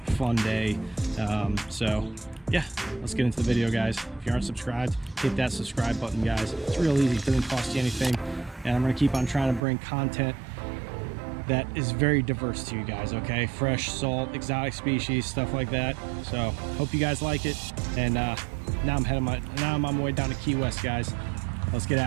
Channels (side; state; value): left; drops out; at 9.6 s